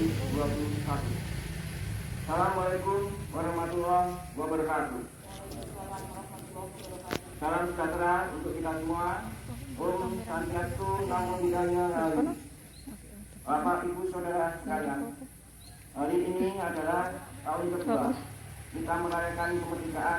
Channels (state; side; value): identical; both; correlation 1.00